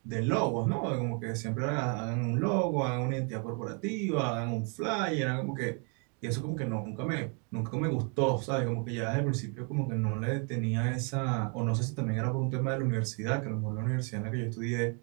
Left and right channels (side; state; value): left; quieter; 37.4 dB